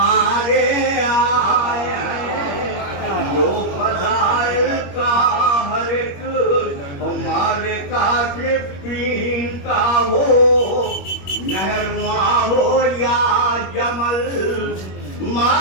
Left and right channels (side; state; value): right; late; 21 ms